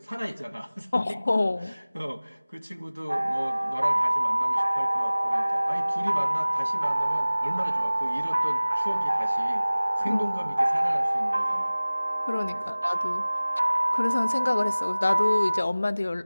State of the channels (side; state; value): both; inverted; correlation -0.99